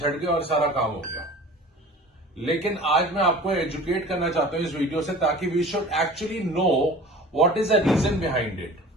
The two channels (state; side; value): normal; both; correlation 0.42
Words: गए और सारा काम हो गया. लेकिन आज मैं आपको एजुकेट करना चाहता हूं इस वीडियो से, ताकि we should actually know what is the reason behind it.